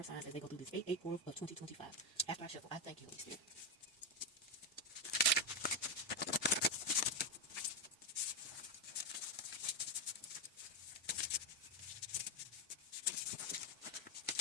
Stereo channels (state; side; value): normal; both; correlation 0.06